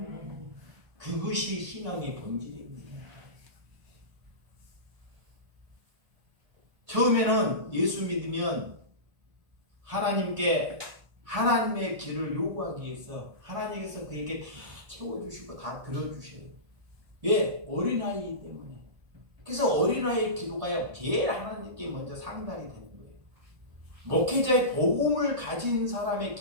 그것이 신앙의 본질입니다. 처음에는 예수 믿으면 하나님의 길을 요구하기 위해서 하나님께서 그에게 다 채워주시고 다 들어주셔요. 왜? 어린아이이기 때문에. 그래서 어린아이의 기도가 제일 하나님께 먼저 상달이 되는 거예요. 목회자의 복음을 가진 사람의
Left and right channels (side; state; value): left; late; 1.5 ms